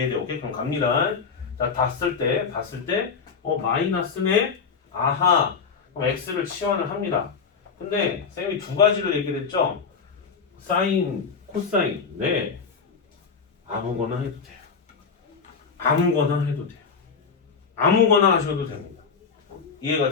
오케이? 그럼 갑니다. 자, 봤을 때 마이너스네. 아하. 그럼 x를 치환을 합니다. 근데 쌤이 두 가지를 얘기를 했죠. 사인, 코사인. 네. 아무거나 해도 돼요. 아무거나 하셔도 됩니다. 이해가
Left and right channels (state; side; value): quieter; right; 5.6 dB